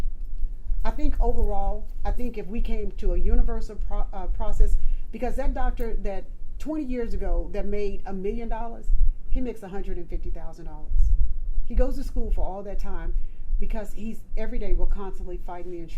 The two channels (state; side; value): identical; both; correlation 1.00